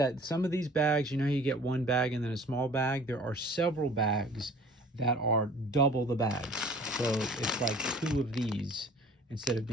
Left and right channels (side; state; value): both; normal; correlation 0.49